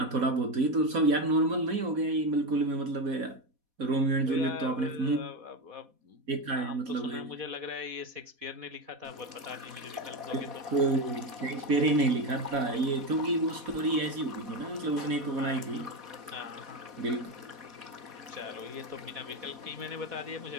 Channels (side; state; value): left; late; 4.1 ms